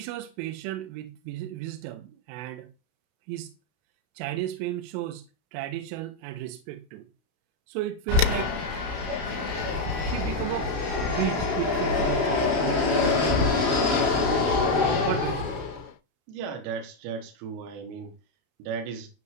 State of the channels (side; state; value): left; late; 32 ms